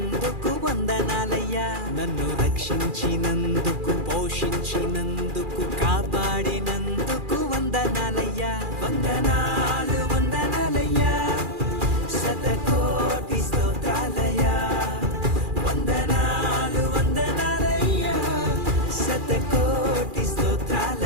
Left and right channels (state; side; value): late; left; 2.4 ms